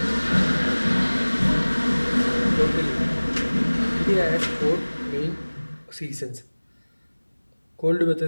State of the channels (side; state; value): both; inverted; correlation -1.00